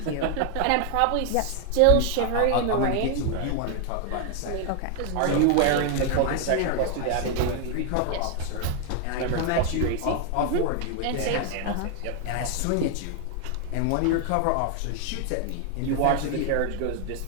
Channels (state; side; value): different; both; correlation 0.00